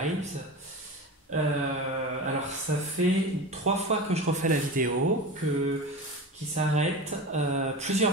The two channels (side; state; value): both; normal; correlation 0.28